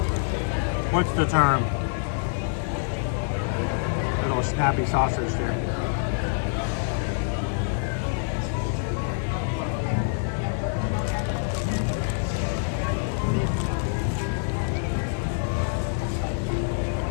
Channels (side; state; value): right; silent; digital silence